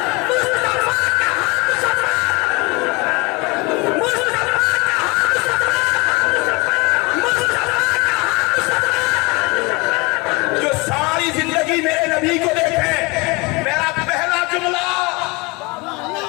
میرے نبی کو دیکھیں. میرا پہلا جملہ,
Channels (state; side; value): quieter; right; 26.4 dB